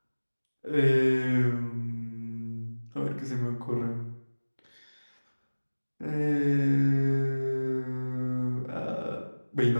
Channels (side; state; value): both; inverted; correlation -1.00